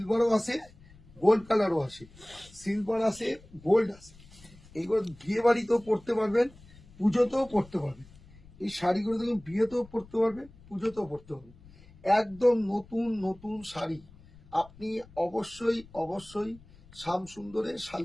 আসে, গোল্ড কালারও আসে। সিলভার আসে, গোল্ড আসে। এইগুলো বিয়ে বাড়িতেও পরতে পারবেন, পুজোতেও পরতে পারবেন। এই শাড়িগুলো দেখুন, বিয়েতেও পরতে পারবেন, পুজোতেও পরতে পারবেন। একদম নতুন নতুন শাড়ি। আপনি অবশ্যই অবশ্যই শ্যামসুন্দরে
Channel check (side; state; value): left; noise; rumble, 23 dB below the sound